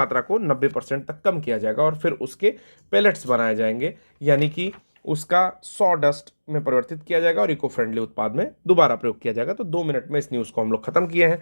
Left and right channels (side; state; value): both; inverted; correlation -1.00